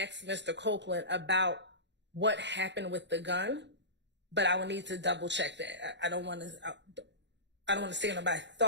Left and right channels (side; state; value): left; late; 0.52 ms